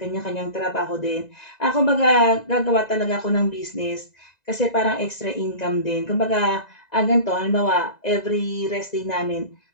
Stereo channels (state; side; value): late; right; 2.0 ms